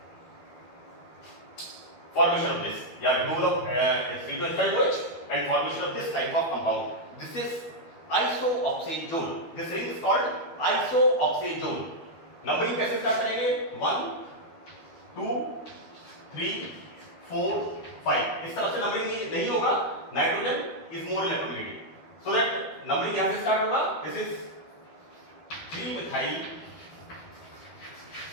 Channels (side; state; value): right; late; 12 ms